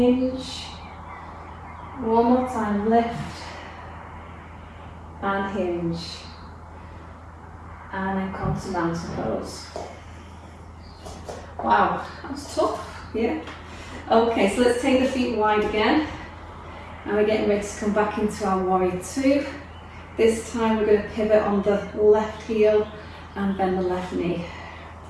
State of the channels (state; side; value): identical; both; correlation 1.00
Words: One more time, lift and hinge. And then come to mountain pose. Wow, that was tough, yeah. Okay, so let's take the feet wide again. And we're getting ready to come back into our warrior two. This time we're going to pivot on the left heel and bend the left knee.